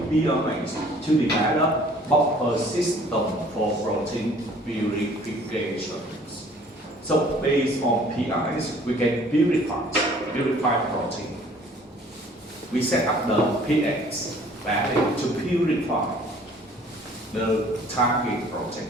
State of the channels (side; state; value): both; normal; correlation 0.54